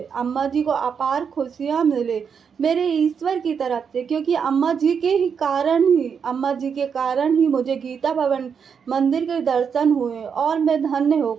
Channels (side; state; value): left; quieter; 6.7 dB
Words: अम्मा जी को अपार खुशियाँ मिले मेरे ईश्वर की तरफ से, क्योंकि अम्मा जी के ही कारण ही, अम्मा जी के कारण ही मुझे गीता भवन मंदिर के दर्शन हुए और मैं धन्य हो